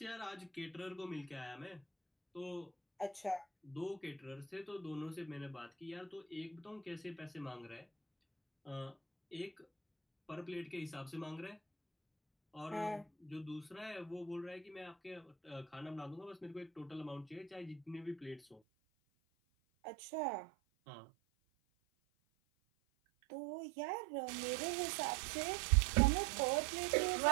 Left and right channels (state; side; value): drops out; left; at 18.6 s